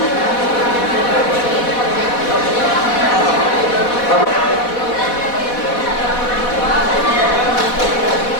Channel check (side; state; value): right; late; 4.1 ms